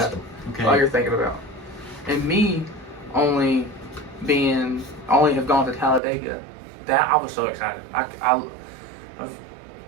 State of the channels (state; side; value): drops out; left; at 6.0 s